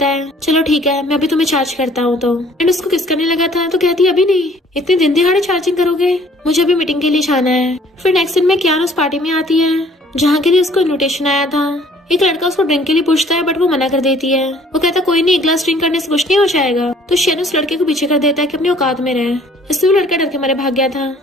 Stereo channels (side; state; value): both; normal; correlation 0.57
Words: है। चलो ठीक है मैं अभी तुम्हें चार्ज करता हूँ। तो एंड उसको किस करने लगा था, तो कहती अभी नहीं, इतने दिन दिहाड़े चार्जिंग करोगे, मुझे अभी मीटिंग के लिए जाना है। फिर नेक्स्ट दिन में कियान उस पार्टी में आती है जहाँ के लिए उसको इन्विटेशन आया था। एक लड़का उसको ड्रिंक के लिए पूछता है बट वो मना कर देती है। वो कहता कोई नहीं, एक ग्लास ड्रिंक करने से कुछ नहीं हो जाएगा। तो शन उस लड़के को पीछे कर देता है कि अपनी औकात में रहे, इसलिए वो लड़का डर के मारे भाग गया था।